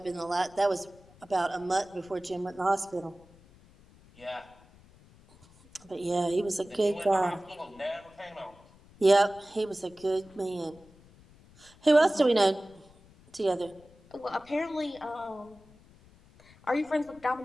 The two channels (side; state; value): left; noise; rumble, 26 dB below the sound